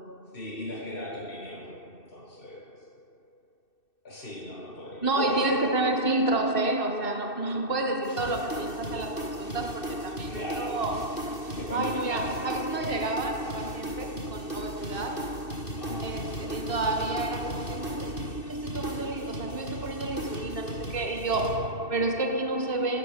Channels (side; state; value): right; late; 2.6 ms